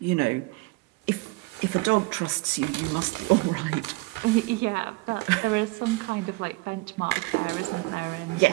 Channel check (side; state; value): left; quieter; 23.7 dB